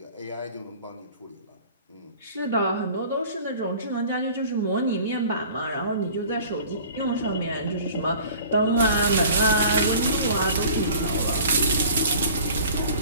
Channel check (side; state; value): both; inverted; correlation -0.46